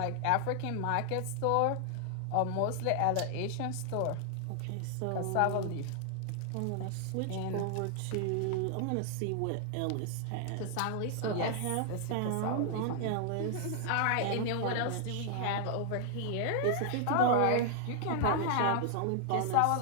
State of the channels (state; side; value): different; both; correlation 0.00